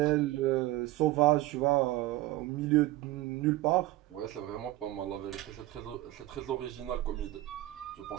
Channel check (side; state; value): left; quieter; 16.6 dB